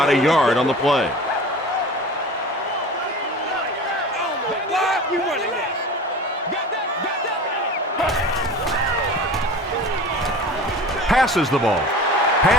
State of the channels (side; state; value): both; normal; correlation 0.37